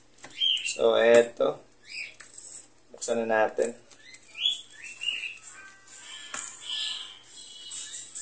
So, eto. Buksan na natin.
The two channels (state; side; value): identical; both; correlation 1.00